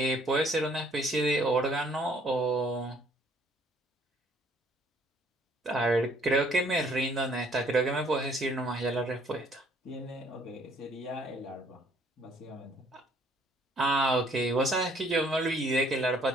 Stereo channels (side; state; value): both; normal; correlation 0.62